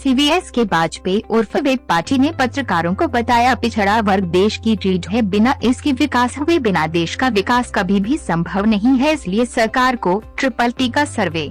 एस.के. वाजपेयी उर्फ वेब पार्टी ने पत्रकारों को बताया, पिछड़ा वर्ग देश की रीढ़ है, बिना इसके विकास हुए बिना देश का विकास कभी भी संभव नहीं है। इसलिए सरकार को ट्रिपल का सर्वे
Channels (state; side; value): identical; both; correlation 1.00